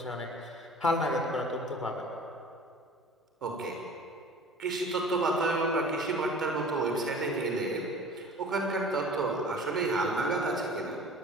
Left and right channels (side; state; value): both; normal; correlation 0.44